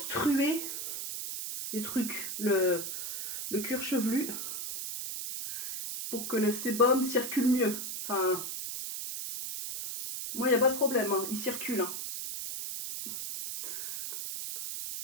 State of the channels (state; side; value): noise; right; hiss, 5 dB below the sound